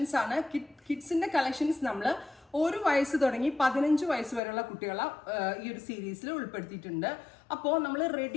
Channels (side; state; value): right; drops out; at 4.4 s